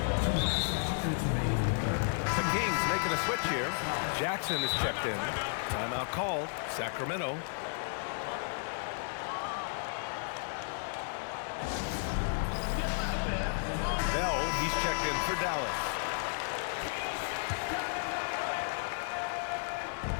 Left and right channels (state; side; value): silent; right; digital silence